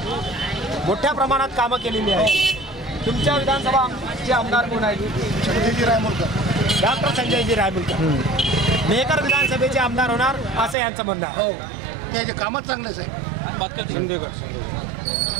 मोठ्या प्रमाणात कामं केलेली आहे. तुमच्या विधानसभाचे आमदार कोण आहेत? संजयजी रायमुलकर. डॉक्टर संजयजी रायमुलकर मेहकर विधानसभेचे आमदार होणार असं यांचं म्हणणं आहे. हो, त्याचे कामच चांगलेच आहे.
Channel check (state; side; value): drops out; left; at 10.8 s